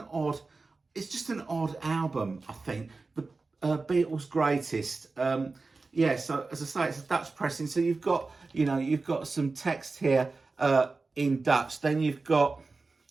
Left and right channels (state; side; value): quieter; left; 3.8 dB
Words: odd album. I think the Beatles' Greatest. Yeah, so as I say, it's a Dutch pressing. So you've got some text here in Dutch. Then you've got